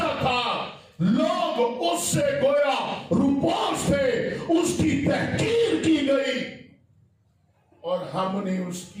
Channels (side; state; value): both; identical; correlation 1.00